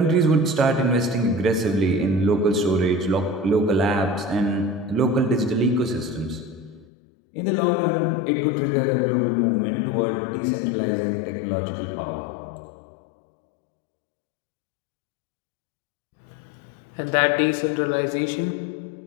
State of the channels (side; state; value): right; drops out; at 6.9 s